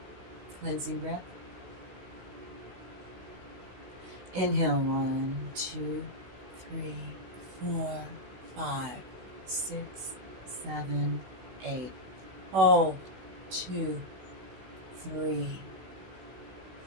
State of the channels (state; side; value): late; left; 16 ms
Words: Cleansing breath. Inhale. 1, 2, 3, 4, 5, 6, 7, 8. Hold. 2, 3,